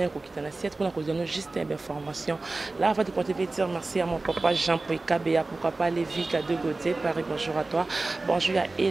la siège pour nous donner juste une information. Là, avant de continuer, dire merci à mon papa Jean-Paul Kabea, pourquoi pas Lévi K2 Gauthier, Paris, bonjour à toi. Bonjour, il y a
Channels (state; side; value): quieter; left; 3.3 dB